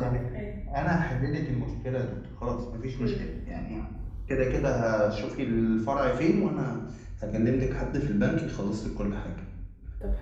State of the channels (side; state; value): both; identical; correlation 1.00